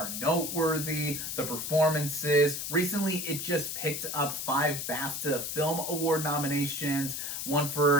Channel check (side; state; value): left; noise; hiss, 4 dB below the sound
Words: noteworthy, the performances. Recently, it just picked up 5 BAFTA Film Award nominations, one